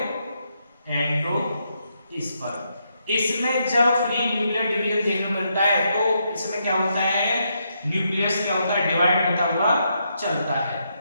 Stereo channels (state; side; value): inverted; both; correlation -0.79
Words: एंडोस्पर्म। इसमें जब फ्री न्यूक्लियर डिवीजन देखने को मिलता है तो इसमें क्या होता है? न्यूक्लियस क्या होता है? डिवाइड होता हुआ चलता है।